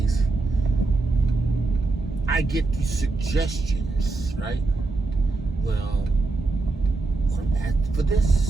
I get these suggestions, right? Well, ask for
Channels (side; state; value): left; quieter; 3.5 dB